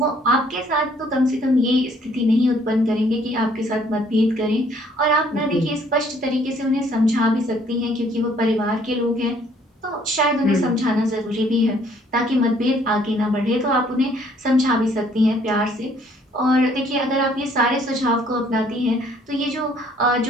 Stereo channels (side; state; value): both; normal; correlation 0.62